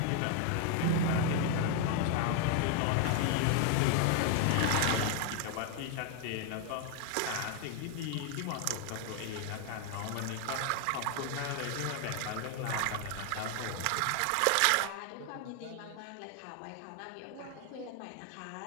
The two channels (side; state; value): both; different; correlation 0.00